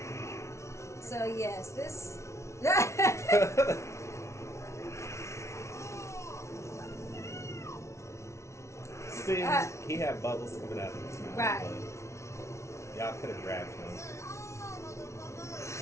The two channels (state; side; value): late; right; 0.13 ms